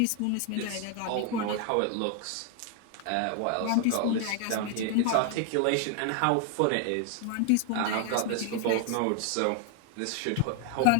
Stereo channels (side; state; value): both; different; correlation 0.00